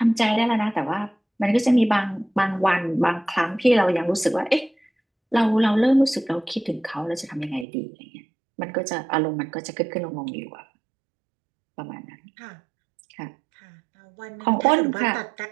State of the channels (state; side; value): drops out; left; at 7.7 s